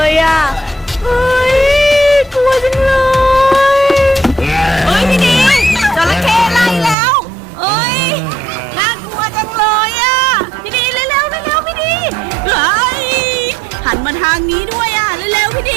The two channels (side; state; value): left; drops out; at 7.0 s